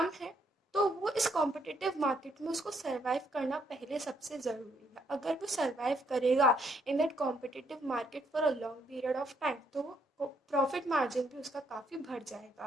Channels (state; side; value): normal; both; correlation 0.71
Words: है तो वो इस कॉम्पिटिटिव मार्केट में उसको सर्वाइव करना पहले सबसे ज़रूरी है। अगर वो सर्वाइव करेगा in that competitive market for a long period of time, तो प्रॉफिट मार्जिन भी उसका काफ़ी बढ़